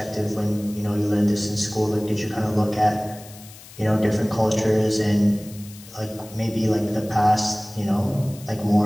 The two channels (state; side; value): noise; left; hiss, 19 dB below the sound